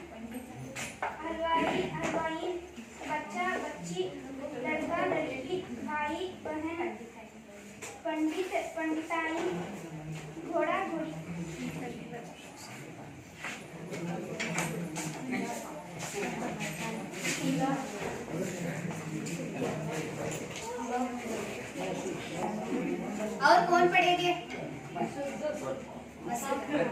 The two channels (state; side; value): identical; both; correlation 1.00